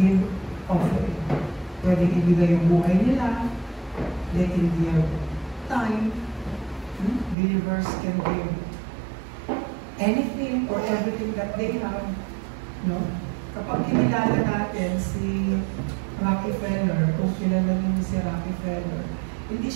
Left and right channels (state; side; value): drops out; left; at 7.4 s